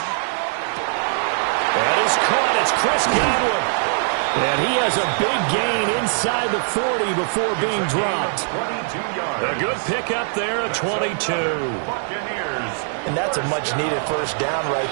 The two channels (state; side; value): silent; left; digital silence